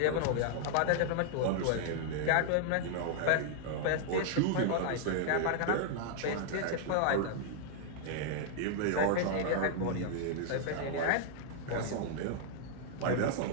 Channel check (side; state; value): both; different; correlation -0.01